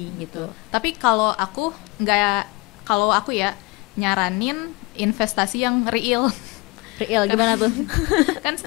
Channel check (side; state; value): right; quieter; 25.2 dB